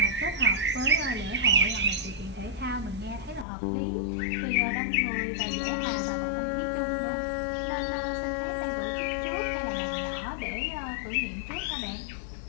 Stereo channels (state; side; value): drops out; right; at 3.5 s